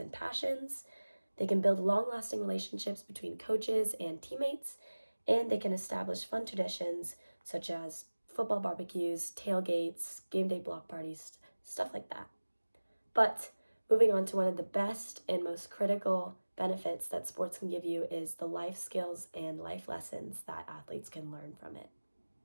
passions. They can build long-lasting relationships between coaches and teammates, and they can establish fun traditions such as football barbecues, tailgates, game day block parties, stuff like that. But moving on to one of the best and most critical benefits that sports can give you is the life skills and life lessons that athletes can learn from it.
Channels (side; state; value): both; inverted; correlation -1.00